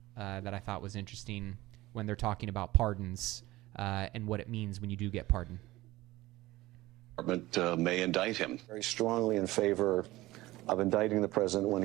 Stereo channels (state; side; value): quieter; left; 18.2 dB